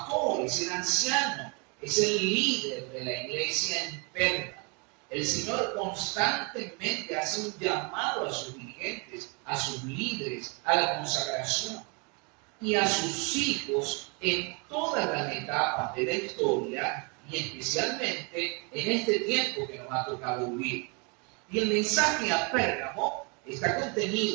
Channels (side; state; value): left; quieter; 32.8 dB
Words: es el anciano, es el líder de la iglesia en Pérgamo. El Señor constantemente hace un llamado a sus dirigentes, a sus líderes, a la consagración y a sus hijos en todas las etapas de la historia y especialmente en este tiempo que nos ha tocado vivir. Y el mensaje a Pérgamo está